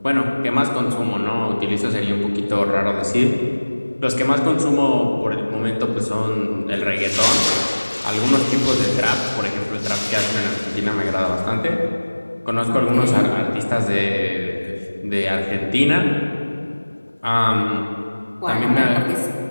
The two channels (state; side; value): inverted; both; correlation -1.00